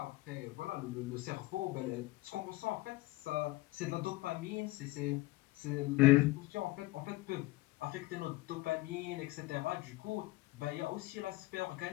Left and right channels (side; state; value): right; quieter; 19.8 dB